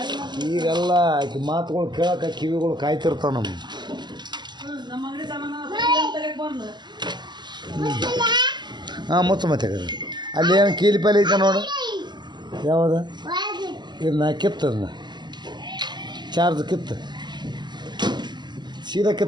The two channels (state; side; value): late; left; 0.21 ms